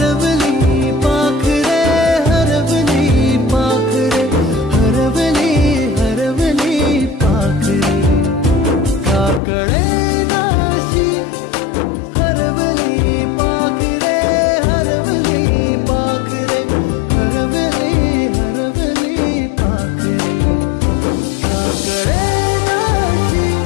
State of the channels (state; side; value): drops out; right; at 9.4 s